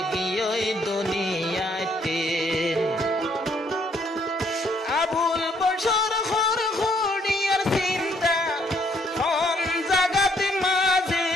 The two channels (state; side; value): normal; both; correlation 0.68